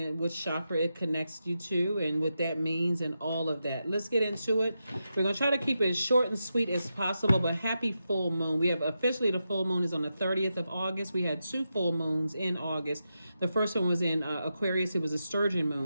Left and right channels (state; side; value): inverted; both; correlation -0.88